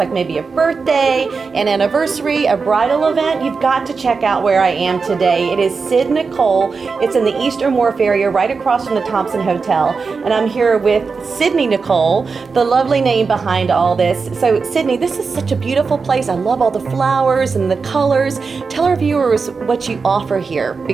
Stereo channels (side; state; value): left; quieter; 4.8 dB